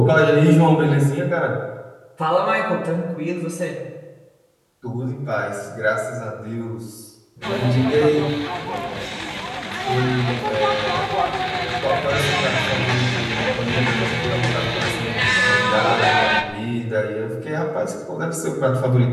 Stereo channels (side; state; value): both; identical; correlation 1.00